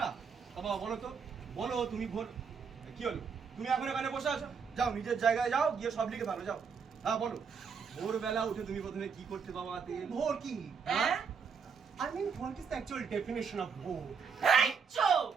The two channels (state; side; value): quieter; left; 6.0 dB